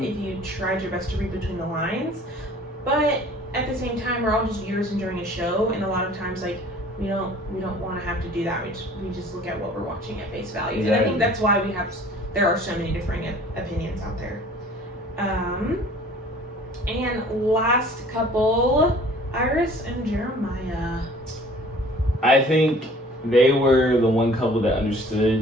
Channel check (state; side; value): normal; both; correlation 0.50